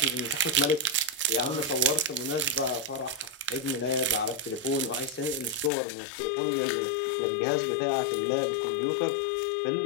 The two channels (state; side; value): drops out; right; at 5.7 s